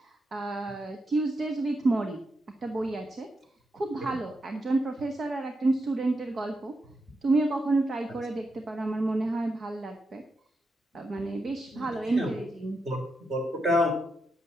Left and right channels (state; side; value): normal; both; correlation 0.85